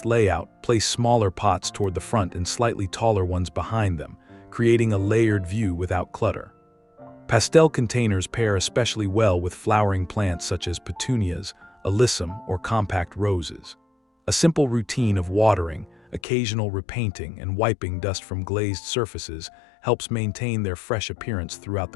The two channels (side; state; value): right; drops out; at 16.2 s